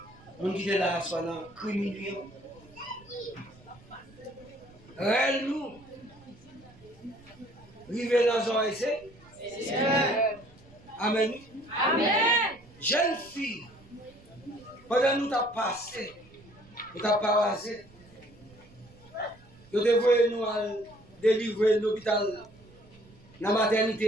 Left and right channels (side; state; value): right; noise; rumble, 25 dB below the sound